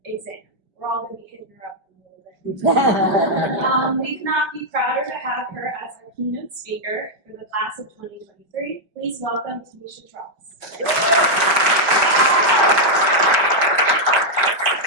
exam. We're all going to be hitting her up in a little bit. We could not be prouder to have her as our keynote speaker for the class of 2023. Please welcome Tanisha Tross.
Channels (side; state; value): left; late; 5.2 ms